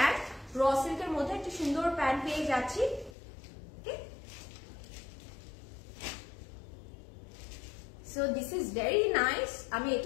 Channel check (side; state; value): right; drops out; at 3.2 s